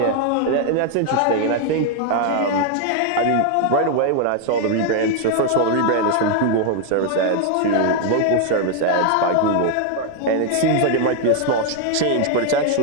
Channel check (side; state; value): both; different; correlation 0.00